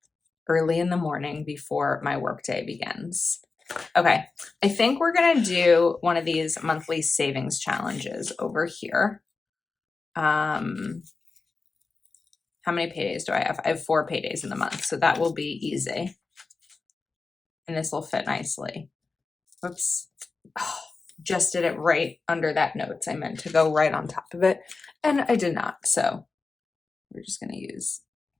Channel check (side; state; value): right; quieter; 4.1 dB